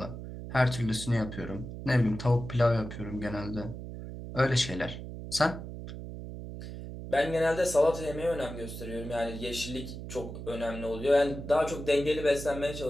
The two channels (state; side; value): noise; right; hum, 9 dB below the sound